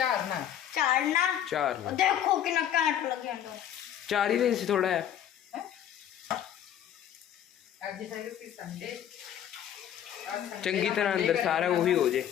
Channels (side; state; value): right; quieter; 10.2 dB